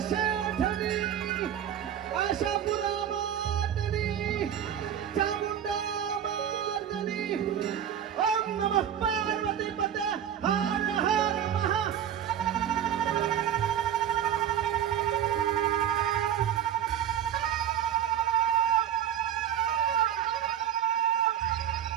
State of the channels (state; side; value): quieter; left; 9.6 dB